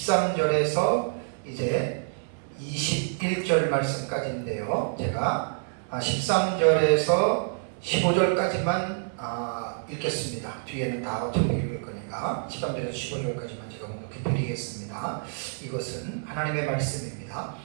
이제 21절 말씀까지인데요. 제가 13절에서 15절까지만 읽겠습니다. 뒤에는 다 어차피 읽을 거니까 13절에서 15절까지만 제가 묵묵히 드리겠습니다. 이것은 하나님의 말씀입니다.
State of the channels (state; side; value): silent; left; 60 dB below the other